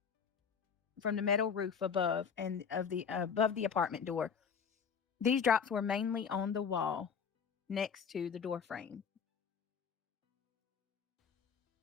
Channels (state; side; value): quieter; right; 6.6 dB